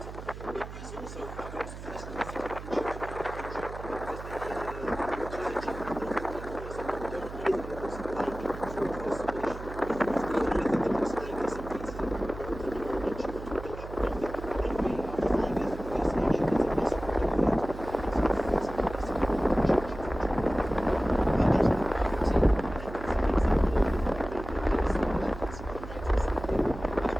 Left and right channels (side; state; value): right; noise; hum, 11 dB below the sound